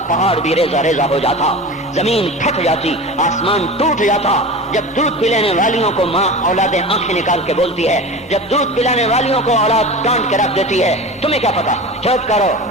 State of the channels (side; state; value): both; normal; correlation 0.32